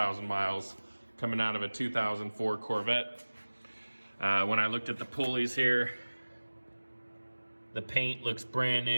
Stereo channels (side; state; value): both; inverted; correlation -1.00